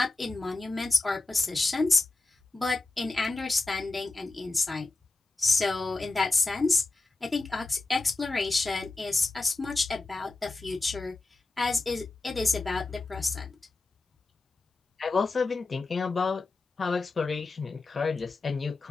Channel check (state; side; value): quieter; right; 3.4 dB